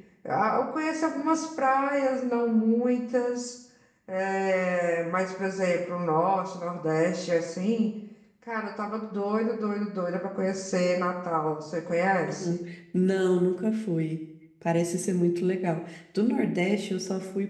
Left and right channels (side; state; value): both; identical; correlation 1.00